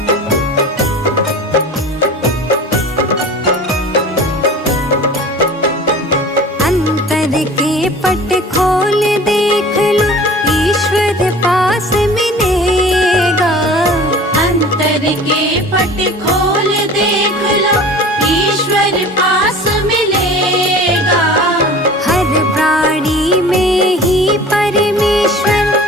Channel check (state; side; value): normal; both; correlation 0.41